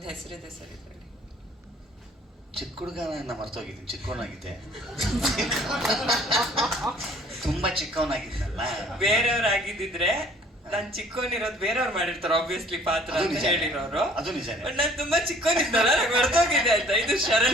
ಹೆಸರಿದೆ ಸರ್ ಇದರಲ್ಲಿ. ಚಿಕ್ಕ ಹುಡುಗನ ಮರ್ತೋಗಿದ್ದೀನಿ, ಚಿಕ್ಕವನಾಗಿದ್ದೆ. ತುಂಬಾ ಚಿಕ್ಕವನಾಗಿದ್ನಲ್ಲ. ಬೇರೆಯವ್ರಾಗಿದ್ದಿದ್ರೆ ನಾನ್ ಚಿಕ್ಕವನಿರೋದು ಬೇರೆಯವ್ರು ಮಾಡಿರ್ತಾರೆ ಆಬ್ವಿಯಸ್ಲಿ ಪಾತ್ರ ಅಂತ ಹೇಳಿರೋರು. ಅದು ನಿಜ. ನಾನ್ ತುಂಬಾ ಚಿಕ್ಕವನಿದ್ದಲ್ಲ, ನಂಗೆ ಮರ್ತೋಗಿದೆ ಅಂತ. ಇದು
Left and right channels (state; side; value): normal; both; correlation 0.55